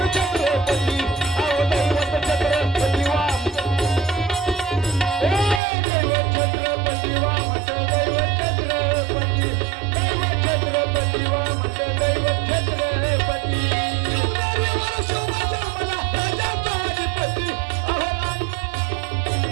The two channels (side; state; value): left; drops out; at 5.6 s